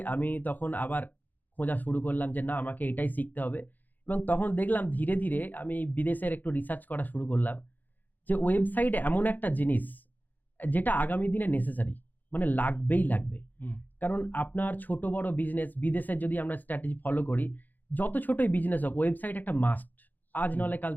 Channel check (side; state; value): right; late; 0.084 ms